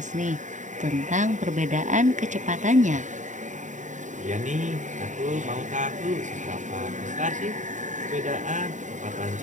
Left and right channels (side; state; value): left; late; 0.36 ms